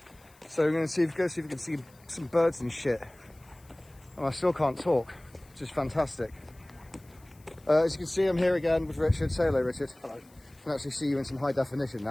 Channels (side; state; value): left; noise; hiss, 29 dB below the sound